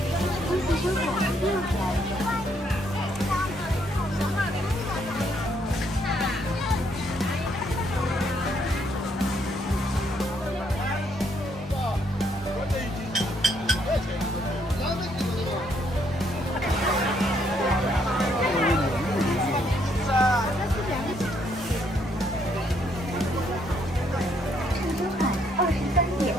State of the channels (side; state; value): both; normal; correlation 0.71